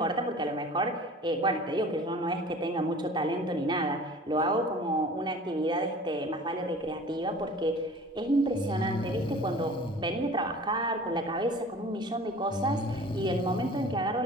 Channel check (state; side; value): normal; both; correlation 0.44